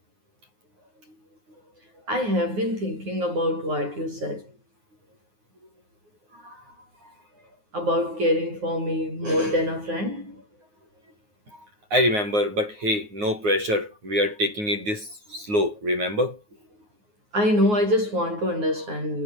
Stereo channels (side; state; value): left; late; 9.6 ms